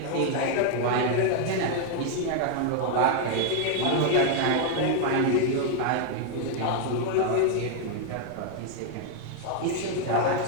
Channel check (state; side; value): different; both; correlation 0.00